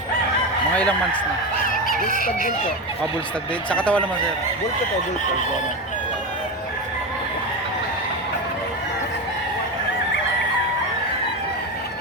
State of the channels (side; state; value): both; normal; correlation 0.17